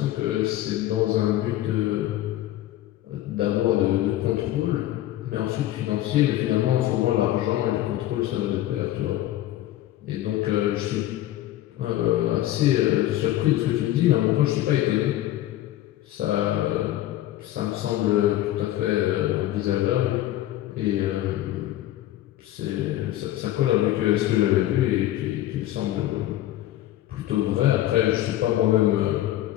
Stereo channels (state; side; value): quieter; right; 14.2 dB